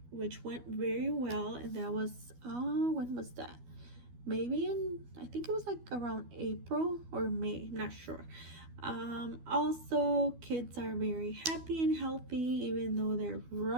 which went very well, and that was when was that? Maybe I think it was like around April or May, I'm not sure. Also, kids are very happy and healthy, even though they're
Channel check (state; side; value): late; left; 12 ms